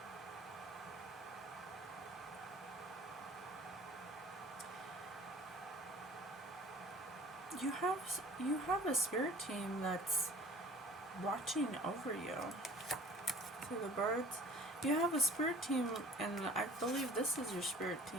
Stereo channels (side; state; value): both; normal; correlation 0.47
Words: You have a spirit team that's watching over you. See the birds? You have a spirit team, and I believe this is your spirit